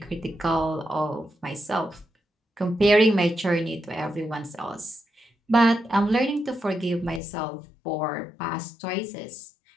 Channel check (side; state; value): right; drops out; at 7.2 s